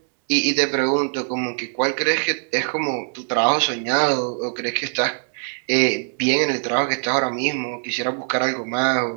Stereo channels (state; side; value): silent; left; 56 dB below the other